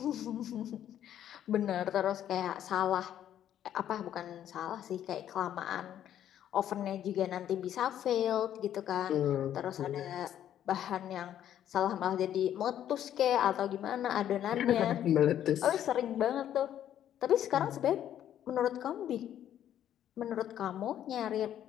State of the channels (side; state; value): right; quieter; 10.8 dB